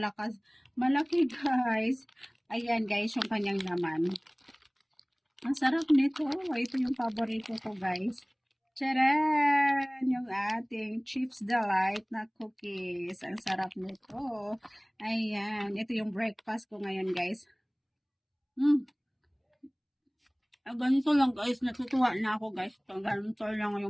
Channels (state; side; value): identical; both; correlation 1.00